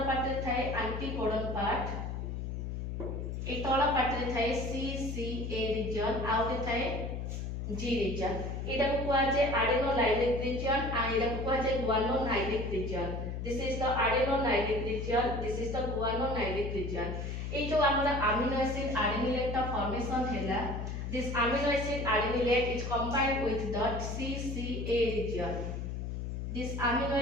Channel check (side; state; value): left; noise; hum, 4 dB below the sound